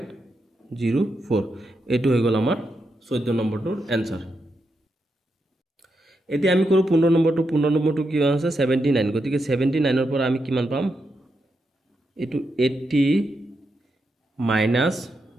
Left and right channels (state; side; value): normal; both; correlation 0.84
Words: এটো হৈ গল আমাৰ 14 নম্বৰটোৰ आंसर এতিয়া আমি কৰো 15 নম্বৰটো কি আছে 79 গতিকে 79 ৰ পৰা আমি কিমান পাম এটো 80 minus